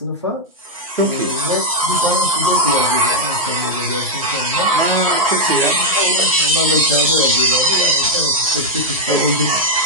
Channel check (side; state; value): both; normal; correlation -0.02